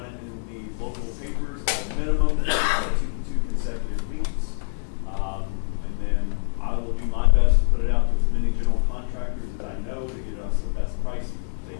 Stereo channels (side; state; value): right; silent; digital silence